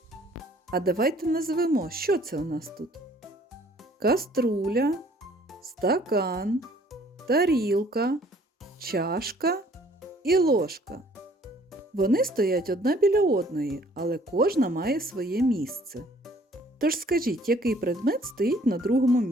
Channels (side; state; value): both; normal; correlation 0.58